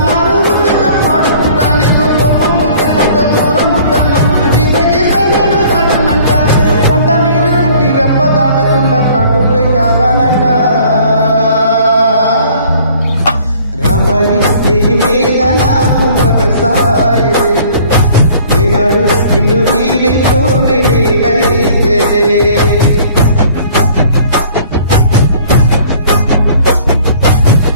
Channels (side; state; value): both; inverted; correlation -0.53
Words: నారు ముద్దుగా పాడుకుంటా. నీకు కోపం వస్తే కొంత దూరం ఉంటాను, గీత నేను దాటనంట. కంట నీరు కంటి రెప్ప దాటకుండా కాటుపై కావాలంట. రాంబాయి నీ మీద నాకు మనసాయనే, ఏనాడు నిన్ను వీడిపోని నీడైతేనే.